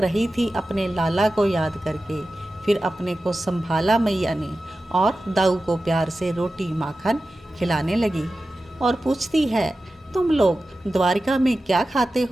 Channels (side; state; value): both; normal; correlation 0.94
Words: थी अपने लाला को याद करके। फिर अपने को संभाला मैया ने और दाऊ को प्यार से रोटी माखन खिलाने लगी और पूछती है, तुम लोग द्वारिका में क्या खाते